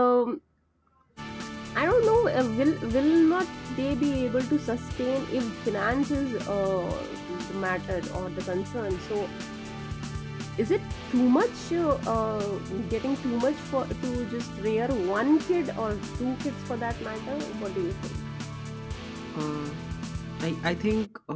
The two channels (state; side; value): identical; both; correlation 1.00